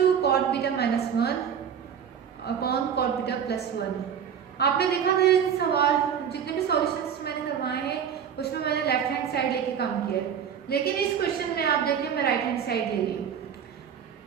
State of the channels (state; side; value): quieter; left; 8.1 dB